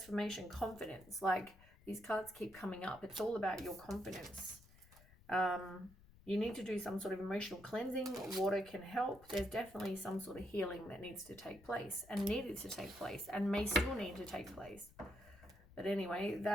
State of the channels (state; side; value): noise; left; rumble, 23 dB below the sound